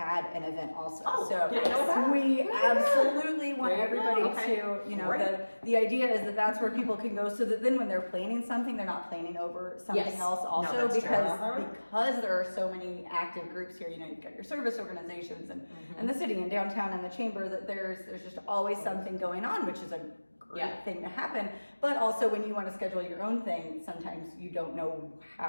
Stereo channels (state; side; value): inverted; both; correlation -1.00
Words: an event also. Oh, so didn't know that. we absolutely want There you go. everybody Okay. to, you know, Great. the idea is that that's where people can go, so that then when they're planning something, they're not planning over something Yes. else No, also, that's true. because Uh-huh. because there are so many active groups here. You know, you've got your service organizations and the city and downtown and the chamber, that there's just always something going on, which is a great Yeah. thing to happen. But also when you want to schedule your own thing, sometimes you don't know